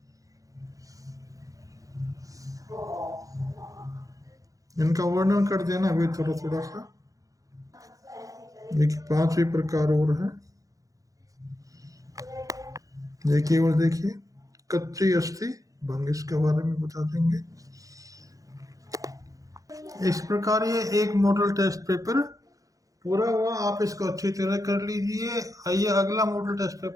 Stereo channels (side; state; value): left; late; 0.17 ms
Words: इनका वर्णन कर देना वे थोड़ा थोड़ा सा। देखिए 5वीं प्रकार और है। ये केवल देखिए कच्ची अस्थि भंग, इसके बारे में बता देंगे। इस प्रकार ये एक मॉडल टेस्ट पेपर पूरा हुआ। आप इसको अच्छी तरह कर लीजिए। आइए अगला मॉडल टेस्ट